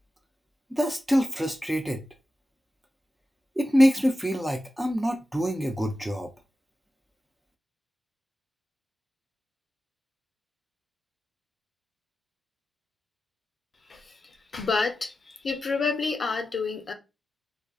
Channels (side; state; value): both; normal; correlation 0.93